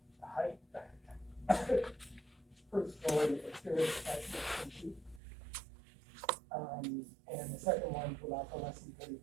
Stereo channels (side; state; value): left; drops out; at 5.2 s